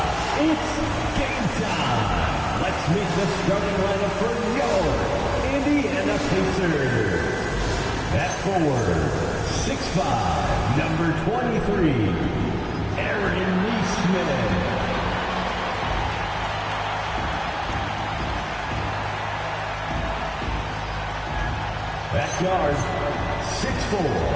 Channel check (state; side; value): identical; both; correlation 1.00